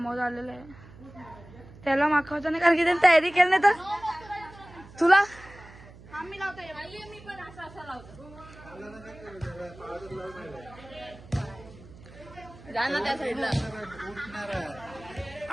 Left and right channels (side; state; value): right; noise; hum, 20 dB below the sound